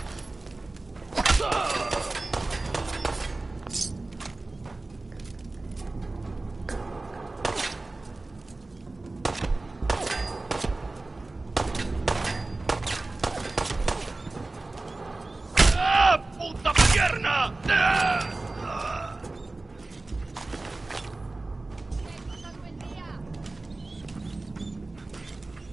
¡Ah, puta pierna!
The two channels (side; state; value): left; quieter; 3.1 dB